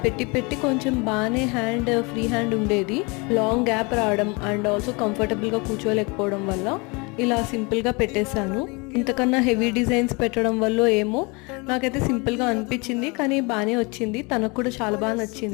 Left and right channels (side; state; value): right; quieter; 28.6 dB